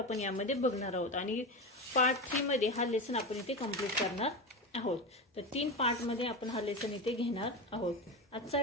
यामध्ये बघणार आहोत आणि पार्ट 3 मध्ये हा लेसन आपण इथे कंप्लीट करणार आहोत. तर 3 पार्ट मध्ये आपण हा लेसन इथे घेणार आहोत. आजचा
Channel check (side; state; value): both; normal; correlation 0.20